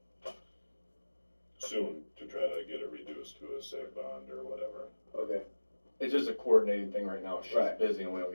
soon to try to get it reduced to a seg bond or whatever. Okay. It's just a coordinating thing right now. She's Right. busy and we don't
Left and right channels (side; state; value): both; inverted; correlation -1.00